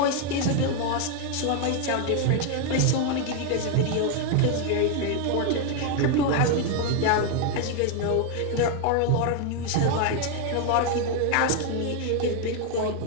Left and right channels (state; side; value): different; both; correlation 0.01